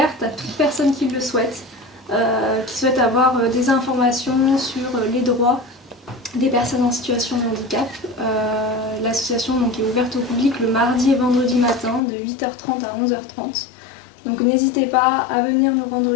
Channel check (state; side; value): drops out; right; at 12.0 s